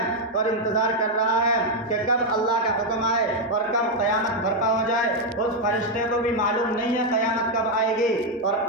اور انتظار کر رہا ہے کہ کب اللہ کا حکم آئے اور کب قیامت برپا ہو جائے۔ اس فرشتے کو بھی معلوم نہیں ہے قیامت کب آئے گی، اور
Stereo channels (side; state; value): both; normal; correlation 0.02